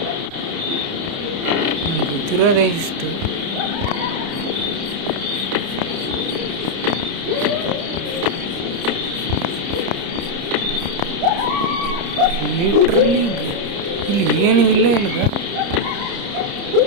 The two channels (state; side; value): late; left; 30 ms